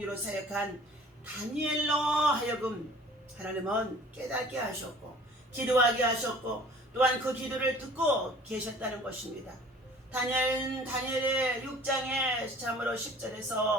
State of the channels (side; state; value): both; normal; correlation 0.49